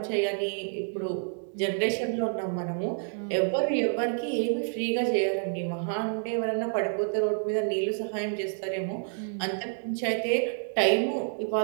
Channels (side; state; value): left; silent; digital silence